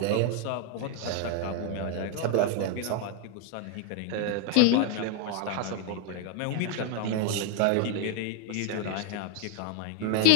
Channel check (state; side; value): different; both; correlation 0.01